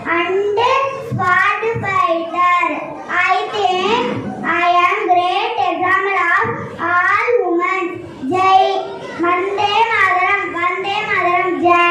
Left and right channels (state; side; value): identical; both; correlation 1.00